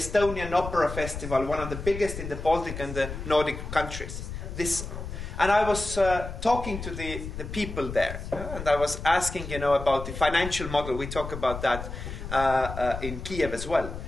Opera Festival, one of the biggest in the Baltic and the Nordic countries. And I was talking to the people there, and I was asking, about the financial model. We talk about that in Kiev as well.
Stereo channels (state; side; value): noise; left; rumble, 8 dB below the sound